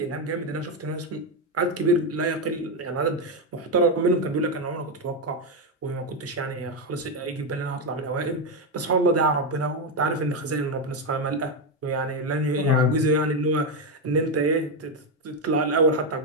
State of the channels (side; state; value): both; normal; correlation 0.06